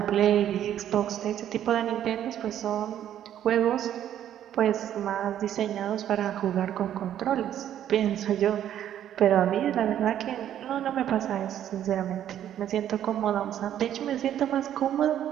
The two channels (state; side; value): quieter; left; 10.8 dB